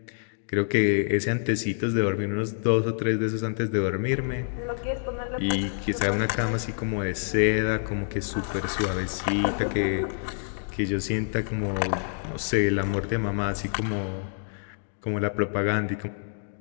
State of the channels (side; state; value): right; silent; digital silence